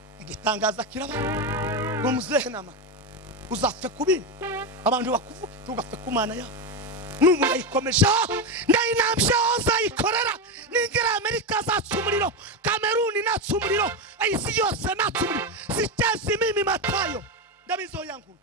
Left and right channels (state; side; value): normal; both; correlation 0.12